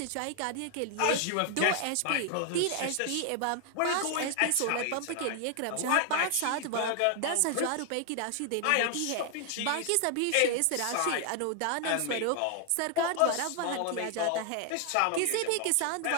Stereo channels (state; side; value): different; both; correlation 0.00